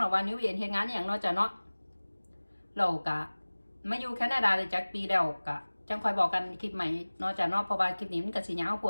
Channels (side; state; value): both; inverted; correlation -1.00